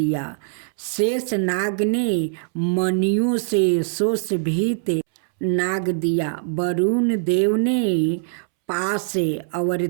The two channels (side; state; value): left; silent; 64 dB below the other